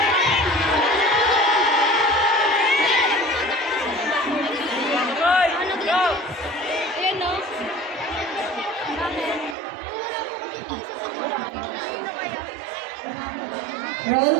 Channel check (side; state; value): left; drops out; at 9.6 s